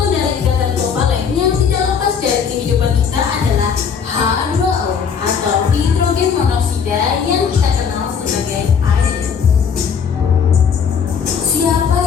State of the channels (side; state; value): right; quieter; 6.7 dB